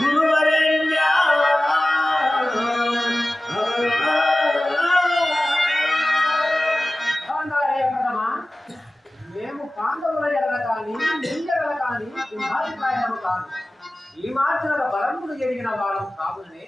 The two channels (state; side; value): normal; both; correlation 0.97